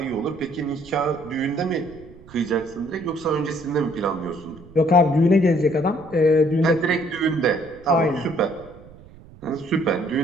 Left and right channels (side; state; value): right; noise; rumble, 21 dB below the sound